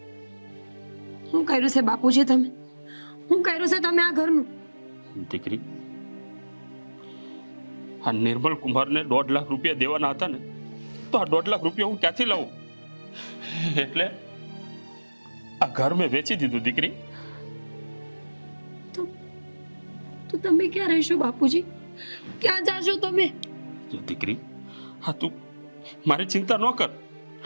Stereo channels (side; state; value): both; inverted; correlation -1.00